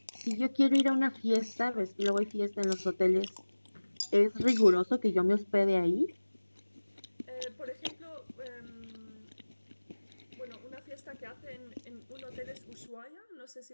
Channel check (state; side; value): inverted; both; correlation -1.00